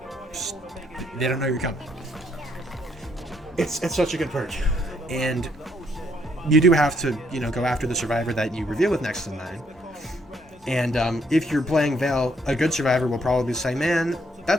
they don't know you're coming. It's such a good perk. And you do have to, you know, go after the survivor that you reveal with next in line. And if you're playing Veil, a good survivor will probably say, man,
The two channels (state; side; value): normal; both; correlation 0.70